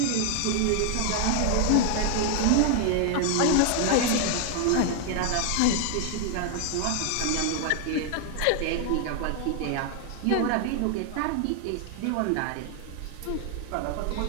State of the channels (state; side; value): different; both; correlation 0.00